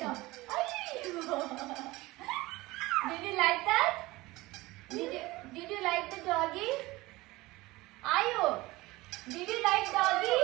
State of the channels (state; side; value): quieter; left; 20.2 dB